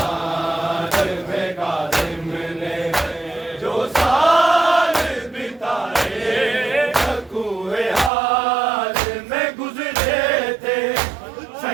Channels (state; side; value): drops out; left; at 8.1 s